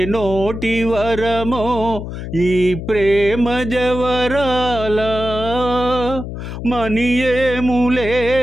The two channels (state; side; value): noise; left; hum, 8 dB below the sound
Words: నోటి వరమో ఈ ప్రేమ జవరాలా. మనియేములే